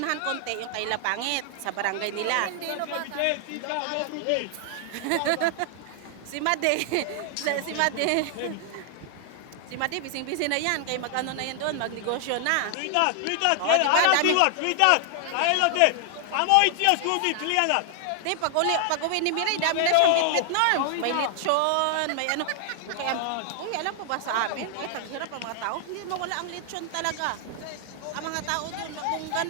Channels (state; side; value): different; both; correlation 0.00